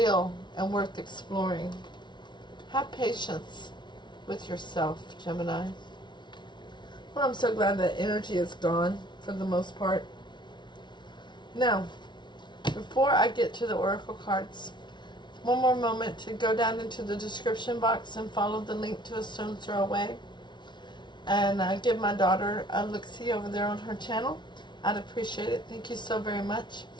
and worth exploring. Have patience with yourself, Gemini. Well, I'm so glad that energy is gone for the most part. Now, before I get to the oracle cards, one more moment to go down into the description box and follow the link to AStonesThrowAway. And give my daughter a look-see over there on her channel. I'd appreciate it. Thank you so very much.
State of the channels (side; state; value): right; late; 0.22 ms